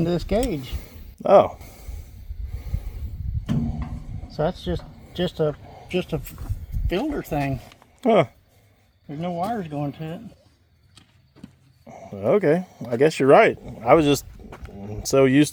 to this gauge. Oh. So that's just a filter thing. Huh. There's no wires going to it. Okay. I guess you're right. I was just so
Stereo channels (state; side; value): identical; both; correlation 1.00